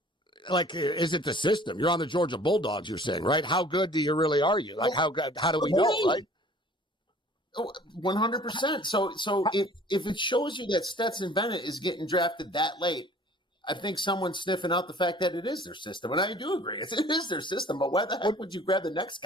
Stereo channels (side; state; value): both; normal; correlation 0.50